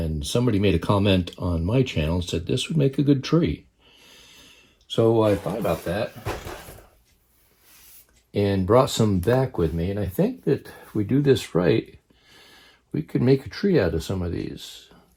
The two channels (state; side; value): identical; both; correlation 1.00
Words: somebody made a comment on my channel and said this would make a good tree. So I thought about that and brought some back with me, and I think that if we do this right, we could make a tree out of some of these.